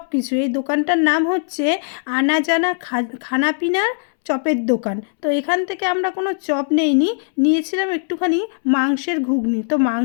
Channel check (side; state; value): right; silent; 66 dB below the other